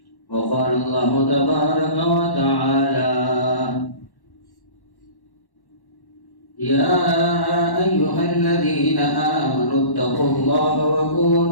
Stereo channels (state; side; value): late; right; 1.1 ms